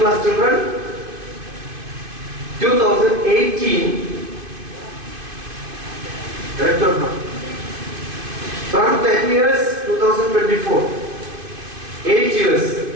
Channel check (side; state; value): left; late; 2.5 ms